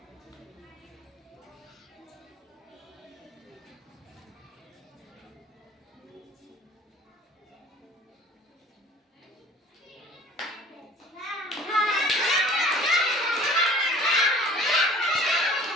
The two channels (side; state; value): both; normal; correlation 0.49